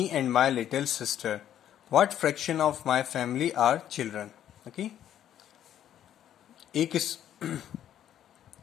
and my little sister. What fraction of my family are children? Okay. एक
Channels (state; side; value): quieter; right; 10.8 dB